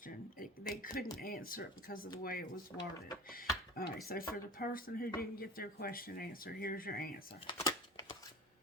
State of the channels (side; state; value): both; normal; correlation 0.36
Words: They couldn't answer it because of the way it was worded. All right, so for the person who didn't get their question answered, here's your answer.